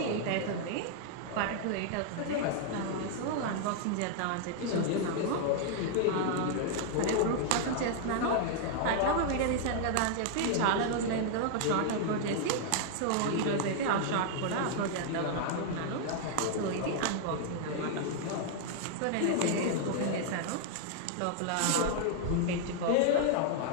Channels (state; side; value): different; both; correlation -0.01